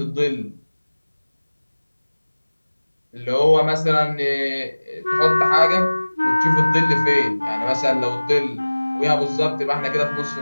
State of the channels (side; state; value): both; inverted; correlation -1.00